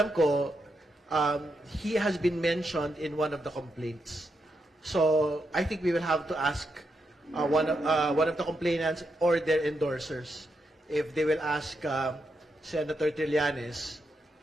ko, he has been mentioned in one of the complaints. So I think we will have to ask one of the complainants or their endorsers if they will ask Senator Trillanes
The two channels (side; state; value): both; normal; correlation 0.83